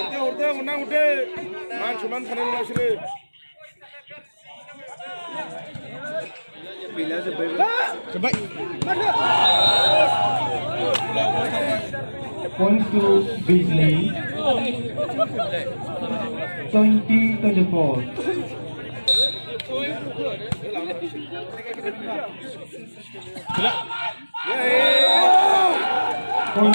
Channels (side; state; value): both; inverted; correlation -1.00